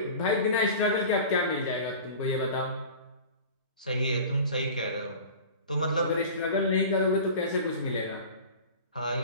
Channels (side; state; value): both; inverted; correlation -0.38